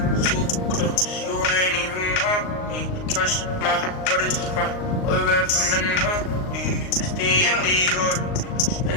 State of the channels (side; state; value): right; late; 38 ms